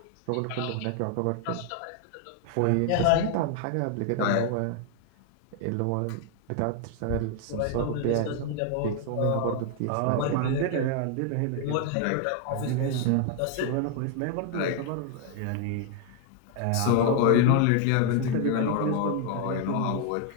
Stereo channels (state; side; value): different; both; correlation 0.00